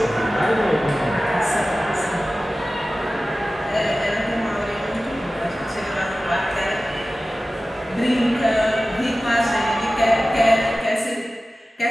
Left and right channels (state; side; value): normal; both; correlation 0.96